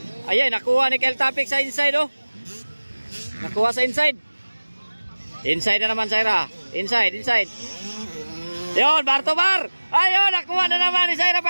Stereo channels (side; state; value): both; inverted; correlation -1.00